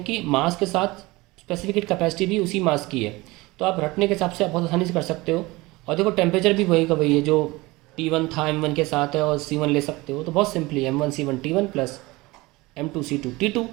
कि मास के साथ स्पेसिफिक कैपेसिटी भी उसी मास की है, तो आप रटने के हिसाब से आप बहुत आसानी से कर सकते हो। और देखो टेम्परेचर भी वही का वही है, जो T1 था M1 के साथ है, और C1 ले सकते हो। तो बहुत simply M1C1T1 plus M2C2T2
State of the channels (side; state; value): left; quieter; 21.7 dB